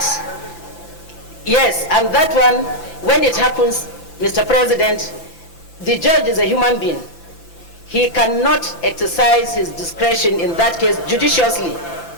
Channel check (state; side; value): late; right; 5.9 ms